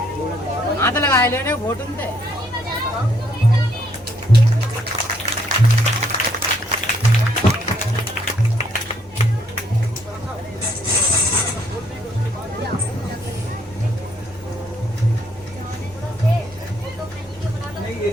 हाथ लगाए लेने घोटन थे।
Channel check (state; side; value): normal; both; correlation 0.69